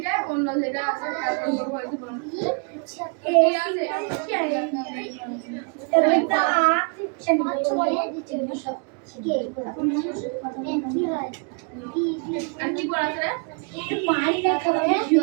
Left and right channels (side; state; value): left; quieter; 39.2 dB